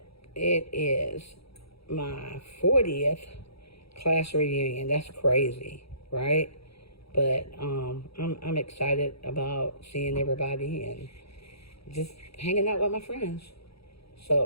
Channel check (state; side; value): late; right; 0.77 ms